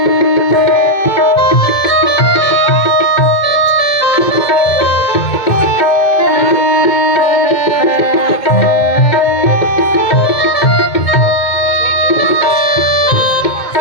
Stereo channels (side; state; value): right; late; 2.1 ms